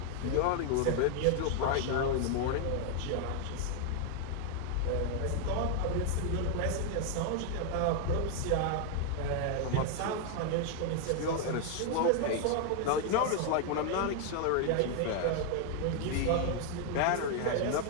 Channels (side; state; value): both; different; correlation 0.00